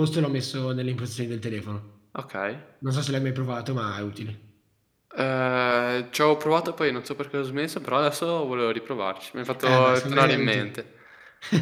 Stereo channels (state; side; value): identical; both; correlation 1.00